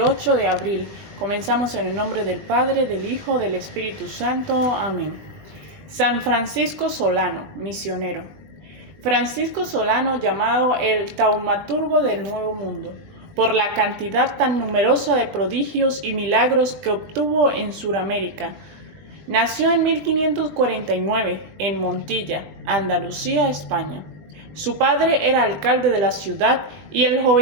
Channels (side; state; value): left; late; 20 ms